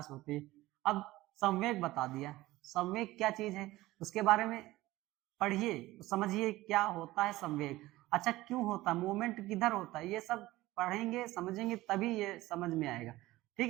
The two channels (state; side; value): quieter; left; 17.7 dB